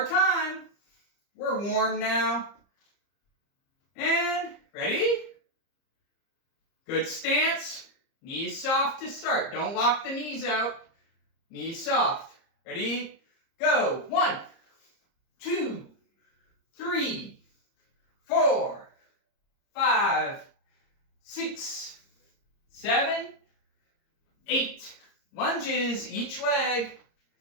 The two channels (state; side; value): late; right; 30 ms